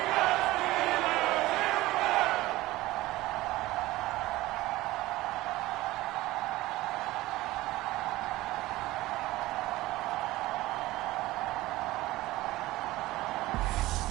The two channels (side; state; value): left; quieter; 18.0 dB